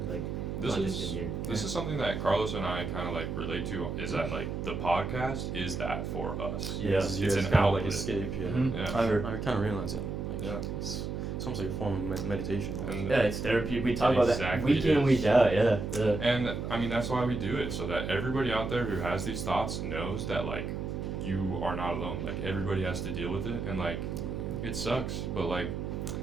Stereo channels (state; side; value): noise; right; hum, 4 dB below the sound